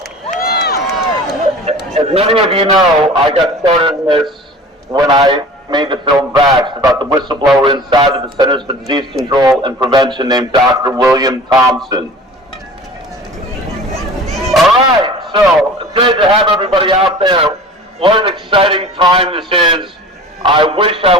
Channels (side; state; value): both; normal; correlation 0.41